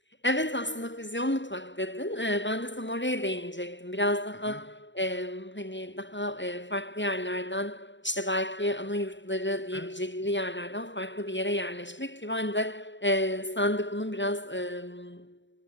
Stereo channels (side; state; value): right; late; 0.53 ms